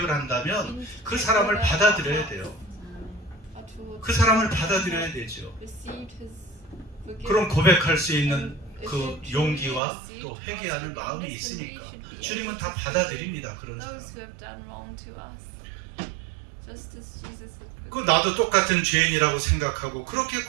한다면 그 사람을 받아들여야 돼요. 그 사람을 받아들여야 되죠. 그럼 고백할 수 있는 그 용기와 또 회개하는 마음이 있으니까 주님은 다 받아들입니다. 그런 사람. 그 나도 똑같은 죄인이라고 생각하고 그렇게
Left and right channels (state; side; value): drops out; left; at 9.8 s